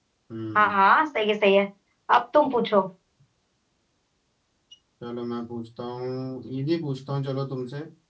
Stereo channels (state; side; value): identical; both; correlation 1.00